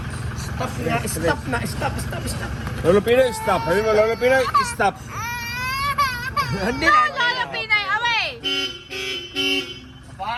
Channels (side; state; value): both; identical; correlation 1.00